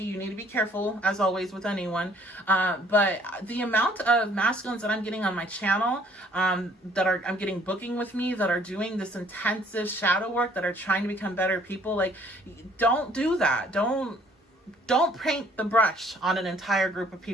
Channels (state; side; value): normal; both; correlation 0.60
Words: You need to be careful, as always, with anyone. But the amount of masculines that I'm getting on my channel, I'm getting booking with me, that are doing this intensive shadow work, that are trying to become better people. Like, don't do that. Don't paint the brush on an entire group of